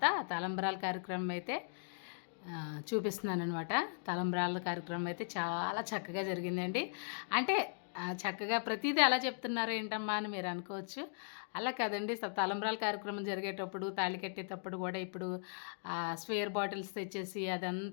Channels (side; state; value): right; silent; digital silence